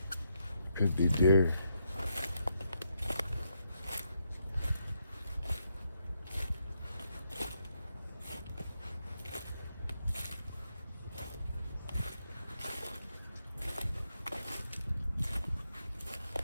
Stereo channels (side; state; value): both; inverted; correlation -0.80